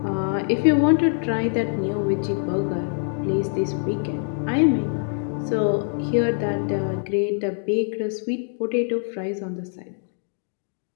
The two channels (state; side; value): silent; right; digital silence